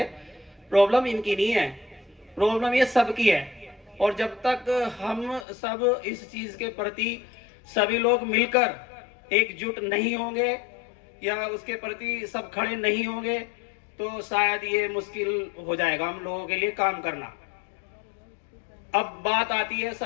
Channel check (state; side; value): drops out; right; at 5.5 s